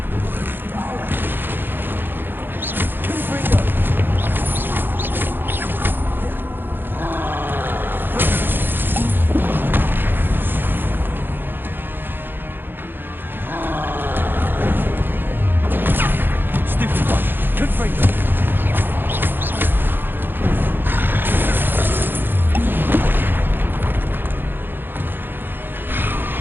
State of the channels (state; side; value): late; left; 0.098 ms